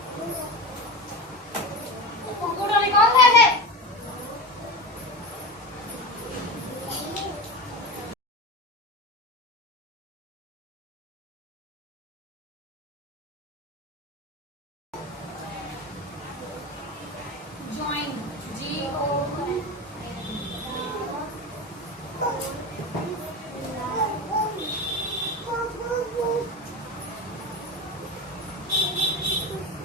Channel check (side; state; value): both; normal; correlation 0.25